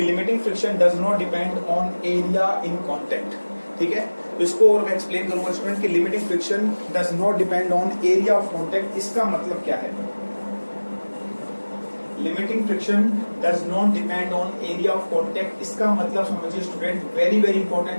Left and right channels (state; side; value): inverted; both; correlation -1.00